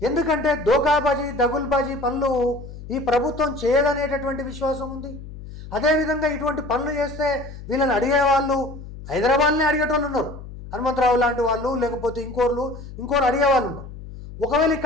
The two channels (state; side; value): noise; left; hum, 13 dB below the sound